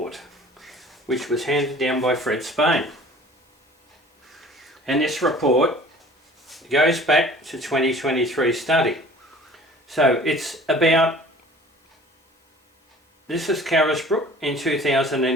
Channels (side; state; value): both; normal; correlation 0.48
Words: which was handed down by Fred Spain. And this report goes back to 2023 study. So it's about, this is Carisbrook in